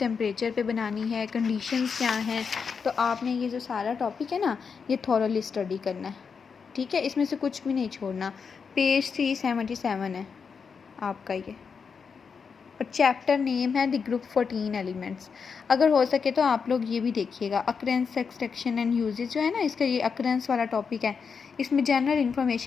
पे बनानी है, कंडीशंस क्या हैं। तो आपने ये जो सारा टॉपिक है ना, ये थॉरली स्टडी करना है, ठीक है, इसमें से कुछ भी नहीं छोड़ना। पेज 377 है आपका ये, और चैप्टर नेम है द ग्रुप 14 एलिमेंट्स। अगर हो सके तो आप लोग ये भी देखिएगा, अकरेंस, एक्सट्रैक्शन एंड यूजेज जो है ना, इसका ये अकरेंस वाला टॉपिक है, इसमें जनरल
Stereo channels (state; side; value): quieter; right; 5.9 dB